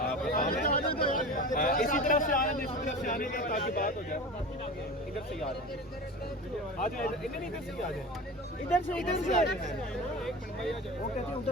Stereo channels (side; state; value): both; normal; correlation 0.32